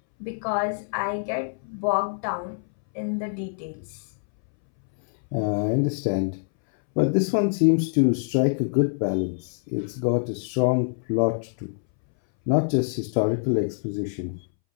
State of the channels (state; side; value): silent; right; 62 dB below the other